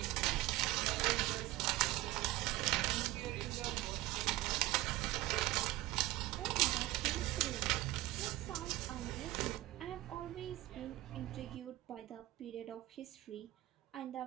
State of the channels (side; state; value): left; quieter; 17.4 dB